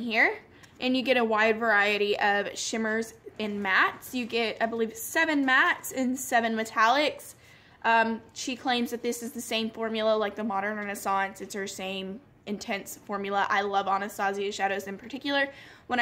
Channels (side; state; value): both; identical; correlation 1.00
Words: and you get a wide variety of shimmers and mattes. You get, I believe, 7 mattes and 7 metallics. She claims that this is the same formula like the Modern Renaissance. It's her same intense formula. I love Anastasia shadows in particular. When